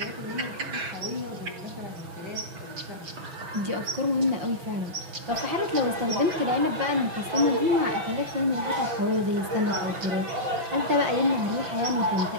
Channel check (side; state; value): left; late; 6.2 ms